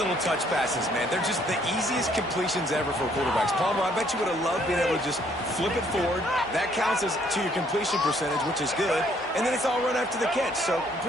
touch passes, man, they're just the easiest completions ever for quarterbacks. Palmer, I bet you would have loved being able to just flip it forward. That counts as to your completion percentage, which is good. And then it's all run after the catch, so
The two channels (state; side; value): normal; both; correlation 0.65